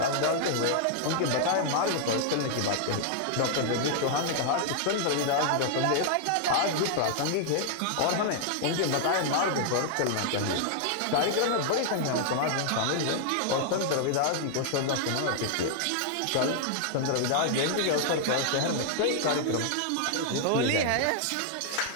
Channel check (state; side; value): different; both; correlation -0.01